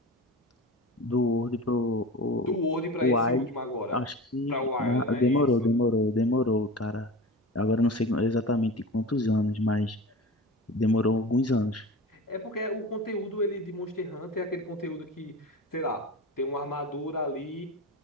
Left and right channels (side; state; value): both; normal; correlation 0.32